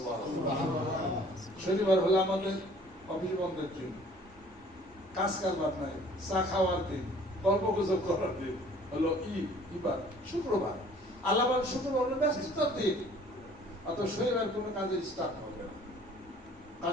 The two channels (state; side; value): normal; both; correlation 0.54